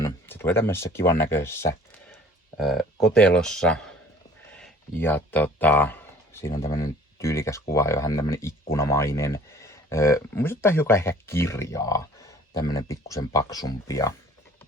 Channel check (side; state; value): both; normal; correlation 0.51